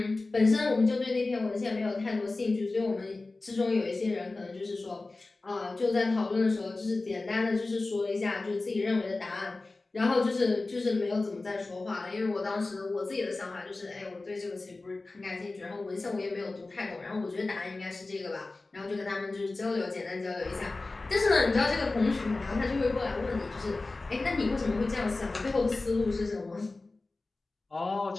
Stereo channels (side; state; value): right; quieter; 3.3 dB